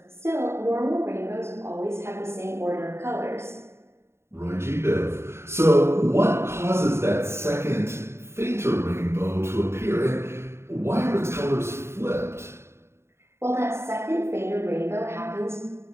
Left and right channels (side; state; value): left; late; 0.12 ms